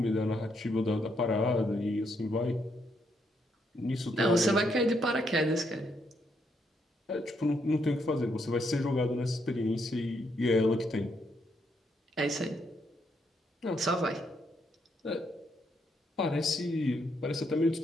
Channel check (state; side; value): normal; both; correlation 0.76